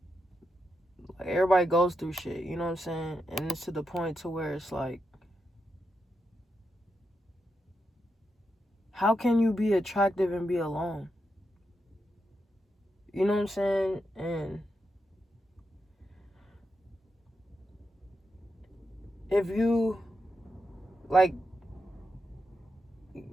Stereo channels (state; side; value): normal; both; correlation 0.85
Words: everybody goes through shit. You know what I'm saying? And it's to the point to where it's like, how can you be attractive and be alone? You know what I'm saying? And if you, like,